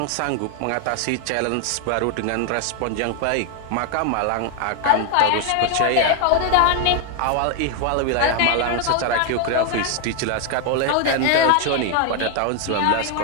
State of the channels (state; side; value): different; both; correlation 0.00